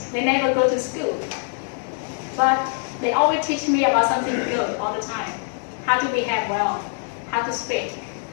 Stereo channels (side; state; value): right; silent; 56 dB below the other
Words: they never go to school, but they always teach me about something good all the time. How to behave well, how to speak.